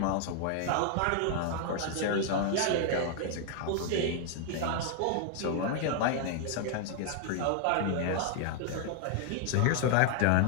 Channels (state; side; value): different; both; correlation 0.00